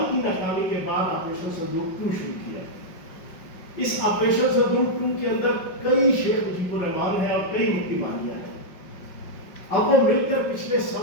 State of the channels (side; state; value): right; late; 5.4 ms